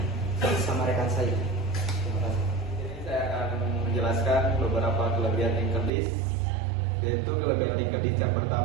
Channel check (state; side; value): drops out; left; at 5.9 s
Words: sama rekan saya. Terima kasih. Jadi saya akan menjelaskan beberapa kelebihan linked list. Yaitu kelebihan linked list yang